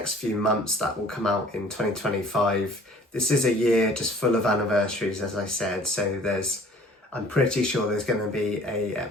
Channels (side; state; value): both; normal; correlation 0.51